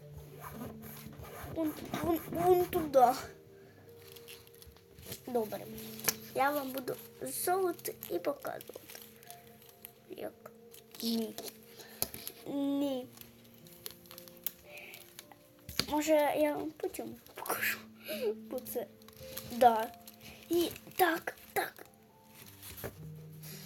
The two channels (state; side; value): identical; both; correlation 1.00